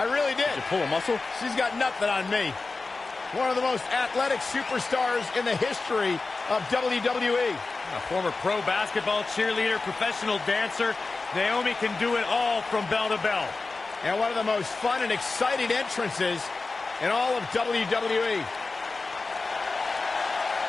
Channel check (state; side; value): quieter; right; 3.8 dB